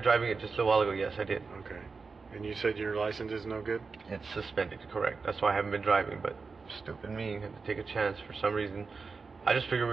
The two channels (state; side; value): quieter; left; 4.6 dB